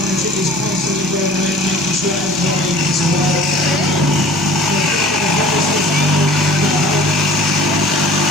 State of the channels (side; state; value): both; normal; correlation 0.47